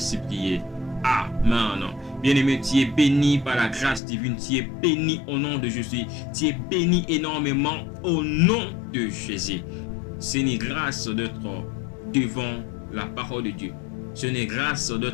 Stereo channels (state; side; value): drops out; right; at 4.0 s